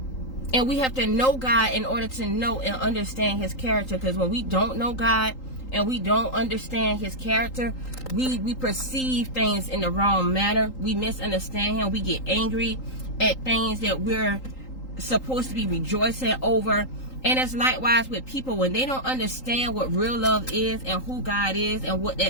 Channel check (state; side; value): late; right; 3.8 ms